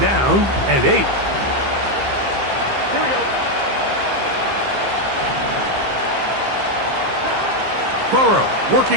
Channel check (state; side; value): late; left; 15 ms